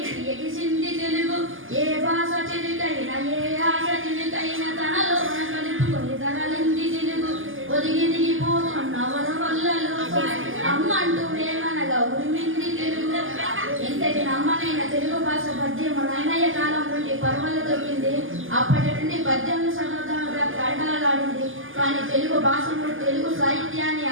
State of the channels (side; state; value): left; late; 0.58 ms